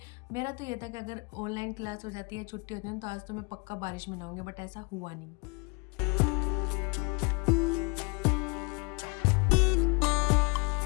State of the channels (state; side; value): quieter; right; 31.8 dB